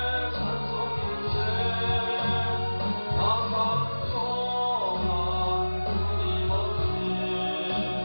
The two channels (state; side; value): inverted; both; correlation -1.00